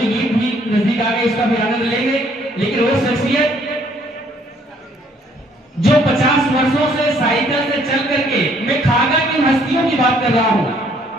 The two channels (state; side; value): normal; both; correlation 0.64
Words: गीत भी नजदीक आ गए, इसका भी आनंद लेंगे। लेकिन वो शख्सियत जो 50 वर्षों से साइकिल से चल करके, मैं खागा की हस्तियों की बात कर रहा हूं,